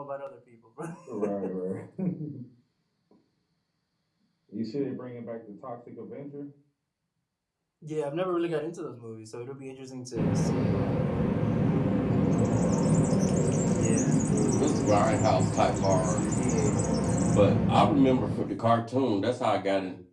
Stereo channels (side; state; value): both; identical; correlation 1.00